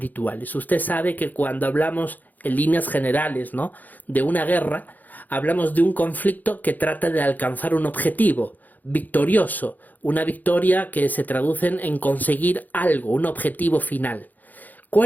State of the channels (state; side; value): late; right; 0.083 ms